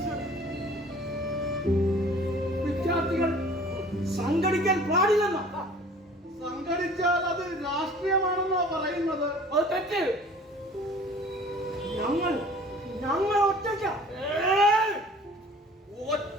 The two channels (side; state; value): both; normal; correlation 0.48